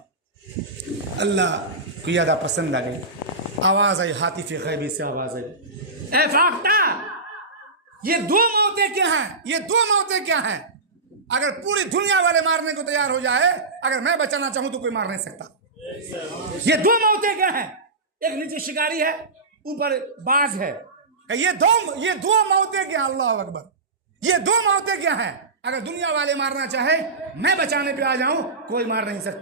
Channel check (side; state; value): left; quieter; 3.5 dB